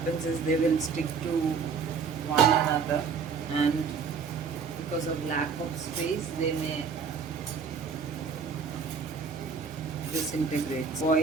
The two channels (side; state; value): left; quieter; 5.7 dB